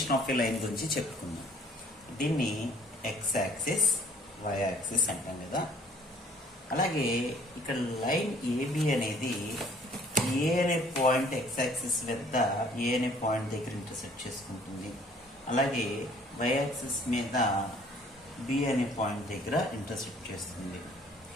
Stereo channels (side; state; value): both; normal; correlation 0.57